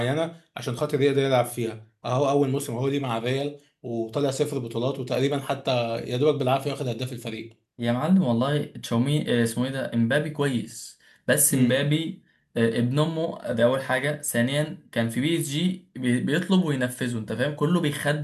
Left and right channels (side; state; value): both; identical; correlation 1.00